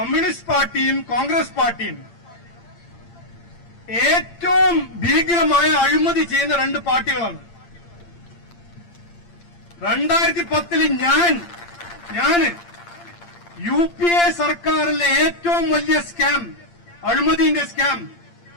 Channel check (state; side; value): late; right; 8.7 ms